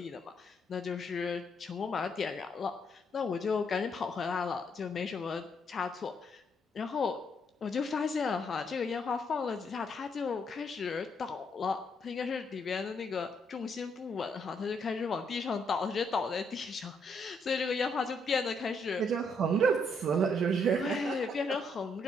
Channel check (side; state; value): both; normal; correlation 0.73